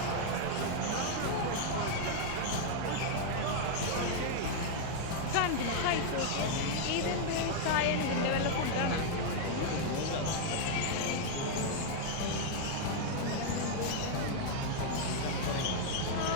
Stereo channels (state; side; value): different; both; correlation 0.00